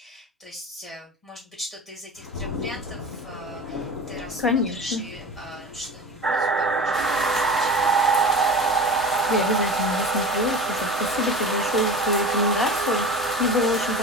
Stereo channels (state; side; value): normal; both; correlation 0.34